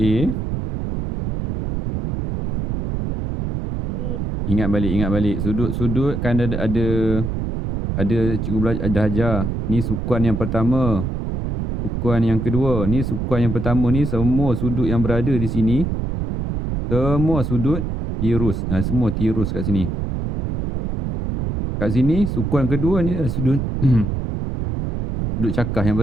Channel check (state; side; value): noise; right; rumble, 3 dB below the sound